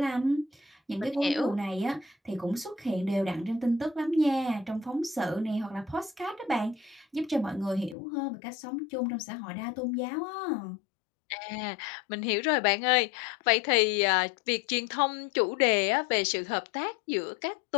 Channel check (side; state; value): right; drops out; at 8.0 s